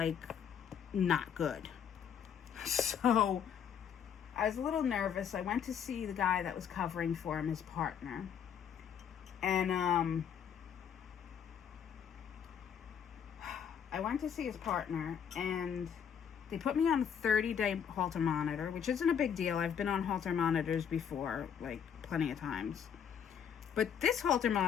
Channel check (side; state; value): right; quieter; 8.0 dB